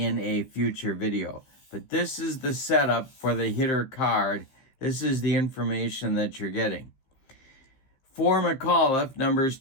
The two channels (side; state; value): right; late; 15 ms